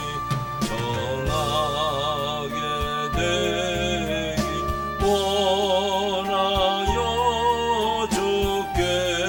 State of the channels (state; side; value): identical; both; correlation 1.00